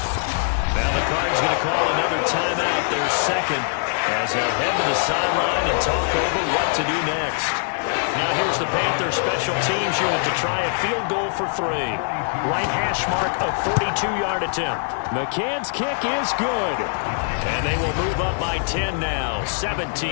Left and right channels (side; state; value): right; silent; digital silence